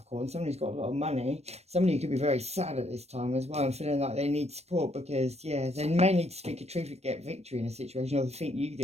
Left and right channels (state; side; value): late; left; 0.31 ms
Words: Somebody's got a lot of money. Somebody could be very sad at this time as well and feeling like they need support because, yeah, they may need to speak a truth and get victory in a situation, or they think you